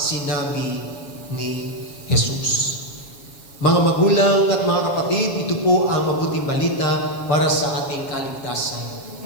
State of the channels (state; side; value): late; right; 7.2 ms